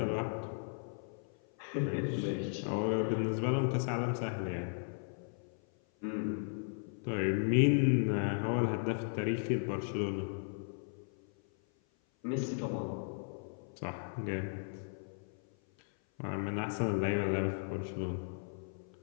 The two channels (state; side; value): silent; right; 54 dB below the other